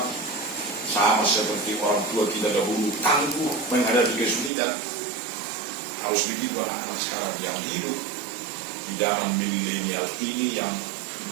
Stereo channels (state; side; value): drops out; left; at 4.5 s